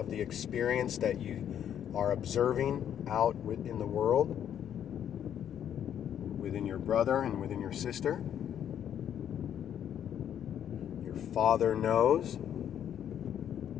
the experience that you are observing out in the world, within your brother and within your sister. Father knows.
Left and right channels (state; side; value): quieter; right; 9.7 dB